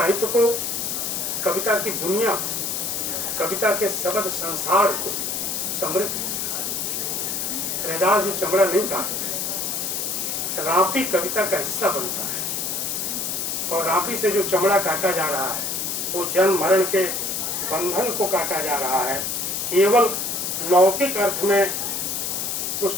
को, कविता की दुनिया, कविता के शब्द संसार को समृद्ध किया। रैदास जी चमड़ा नहीं काटते, रापी कविता का हिस्सा बनता है, और रापी से जो चमड़ा काटा जा रहा है वो जन्म मरण के बंधन को काटा जा रहा है। केवल लौकिक अर्थ में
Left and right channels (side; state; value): left; noise; hiss, 2 dB below the sound